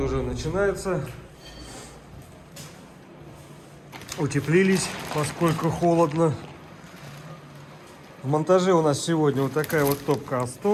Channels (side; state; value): both; identical; correlation 1.00